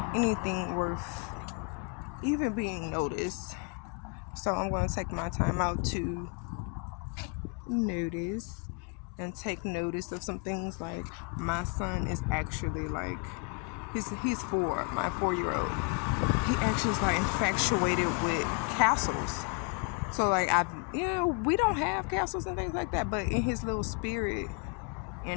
anything worth even being noticed. So I'm going to take my time out to notice and take notice of some things. Like, my son is actually like, he's 4, my 4-year-old. He actually is like infatuated with castles. So like, we don't have castles and things like that, but in his little spirit,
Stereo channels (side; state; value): right; quieter; 33.3 dB